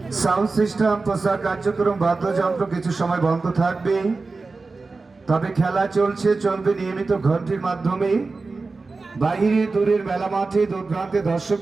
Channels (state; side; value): quieter; left; 3.9 dB